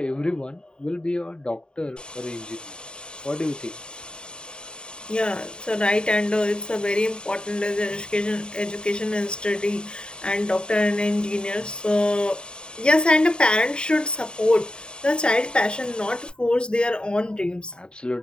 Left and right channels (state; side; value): late; right; 0.049 ms